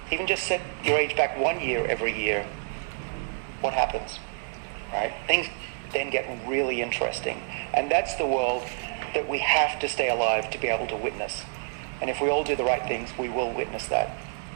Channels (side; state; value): left; silent; digital silence